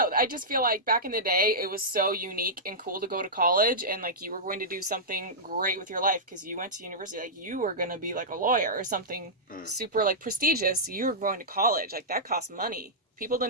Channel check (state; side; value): normal; both; correlation -0.12